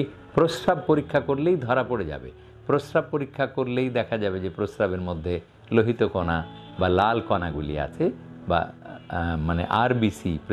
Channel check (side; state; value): both; identical; correlation 1.00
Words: প্রস্রাব পরীক্ষা করলেই ধরা পড়ে যাবে। প্রস্রাব পরীক্ষা করলেই দেখা যাবে যে প্রস্রাবের মধ্যে লোহিত কণা বা লাল কণাগুলি আছে বা মানে আরবিসি,